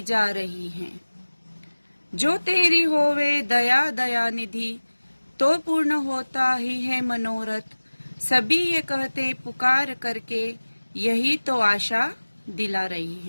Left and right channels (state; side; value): inverted; both; correlation -1.00